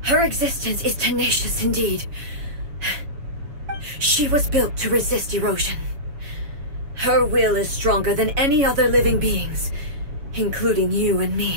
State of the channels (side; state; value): left; late; 7.1 ms